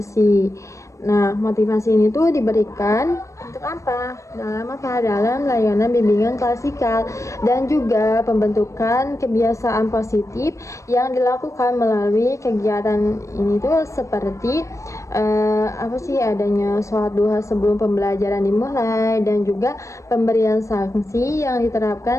Nah, motivasi ini tuh diberikan untuk apa? Dalam layanan bimbingan klasikal dan juga pembentukan kebiasaan positif yang dilakukan melalui kegiatan ini tuh seperti adanya sholat duha sebelum pembelajaran dimulai, dan juga pemberian sanksi yang diterapkan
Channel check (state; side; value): late; right; 0.15 ms